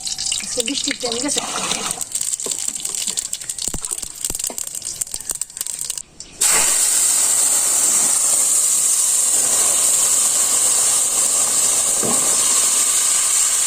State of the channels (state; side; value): identical; both; correlation 1.00